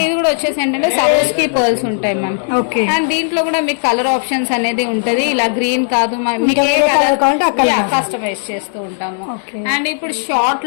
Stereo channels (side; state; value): right; silent; digital silence